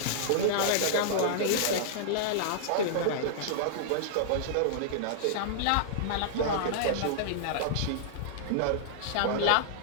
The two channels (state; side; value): different; both; correlation -0.01